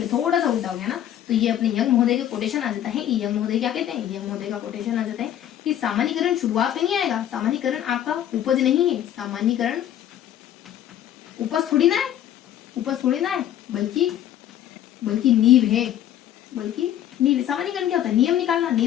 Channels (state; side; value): quieter; right; 11.2 dB